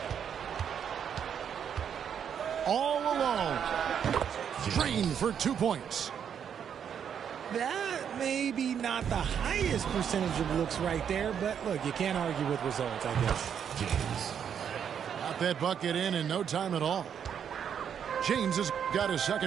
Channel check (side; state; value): left; quieter; 8.2 dB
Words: All alone. Green for 2 points. That may be not the highest percentage of looks right there, but look, you can't argue with results, I guess. James. Got that bucket in no time at all. James has got his